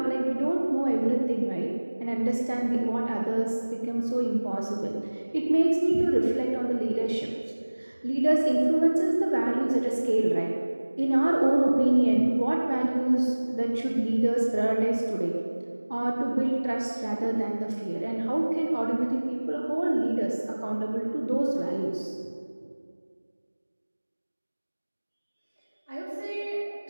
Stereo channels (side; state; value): both; inverted; correlation -1.00